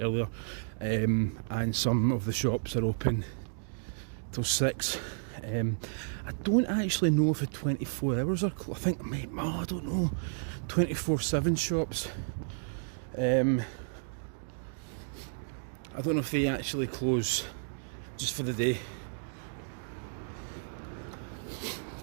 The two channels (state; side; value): silent; left; digital silence